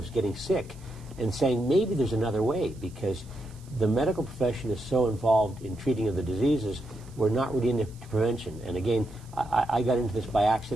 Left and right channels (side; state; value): right; noise; hiss, 26 dB below the sound